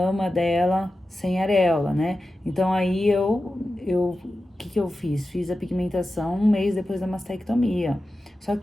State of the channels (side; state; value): both; normal; correlation 0.93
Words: dela sem areola, né? Então, aí o que eu fiz? Fiz a pigmentação 1 mês depois da mastectomia. Só